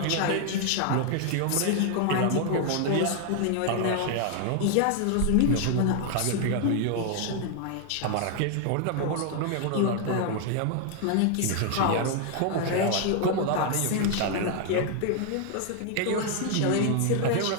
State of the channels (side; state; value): both; different; correlation 0.00